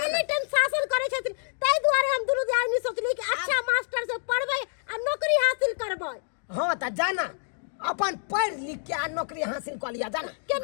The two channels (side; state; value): right; silent; 60 dB below the other